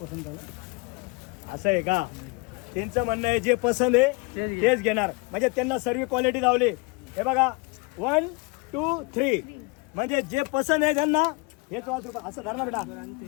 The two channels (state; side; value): quieter; right; 27.4 dB